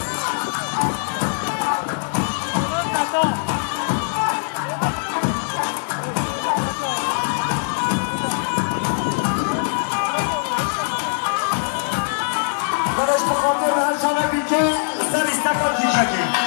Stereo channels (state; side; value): silent; right; digital silence